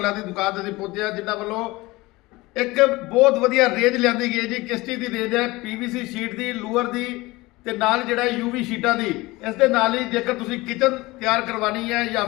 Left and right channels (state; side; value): quieter; right; 21.2 dB